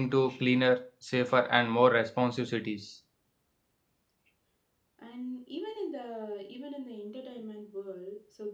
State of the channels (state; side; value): identical; both; correlation 1.00